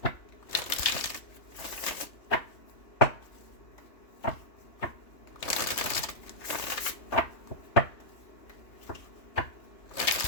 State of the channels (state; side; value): late; right; 3.0 ms